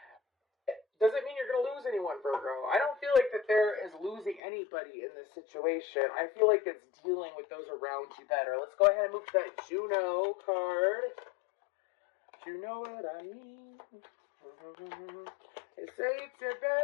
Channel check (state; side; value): drops out; right; at 4.4 s